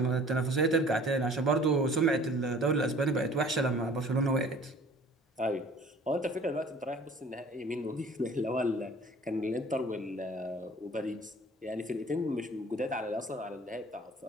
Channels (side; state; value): both; normal; correlation 0.50